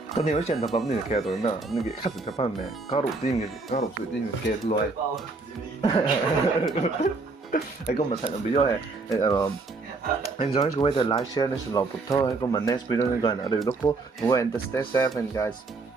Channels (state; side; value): quieter; left; 3.7 dB